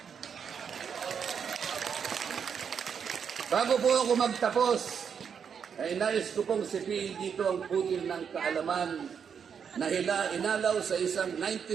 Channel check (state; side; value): quieter; left; 7.1 dB